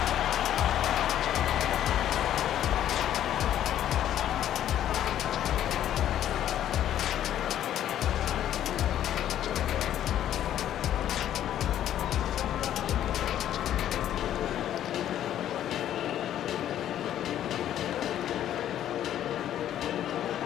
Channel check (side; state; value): right; quieter; 11.3 dB